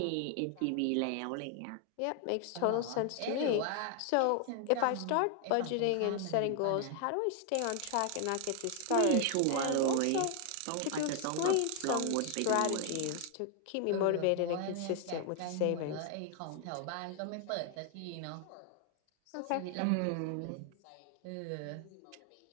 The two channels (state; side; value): different; both; correlation 0.00